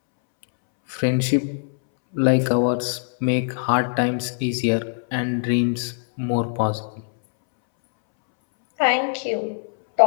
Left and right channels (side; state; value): right; silent; 64 dB below the other